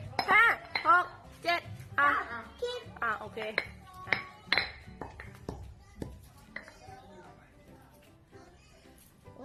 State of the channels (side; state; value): both; identical; correlation 1.00